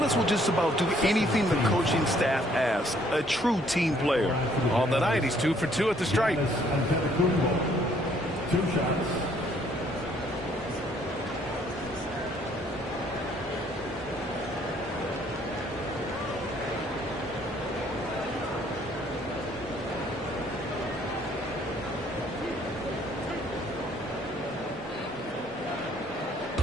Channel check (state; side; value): normal; both; correlation 0.64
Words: will just about do anything the coaching staff asks. A true team player. On the night, he's 2 for 2 at the stripe. 2 shots.